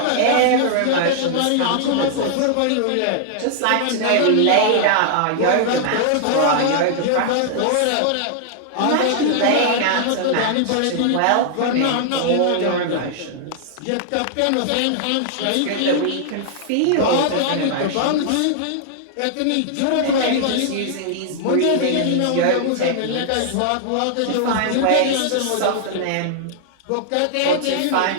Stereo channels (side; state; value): both; different; correlation -0.01